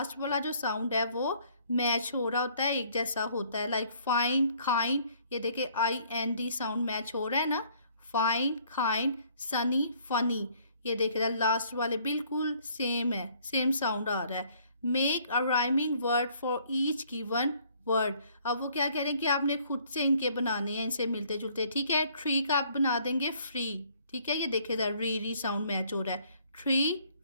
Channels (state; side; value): inverted; both; correlation -0.61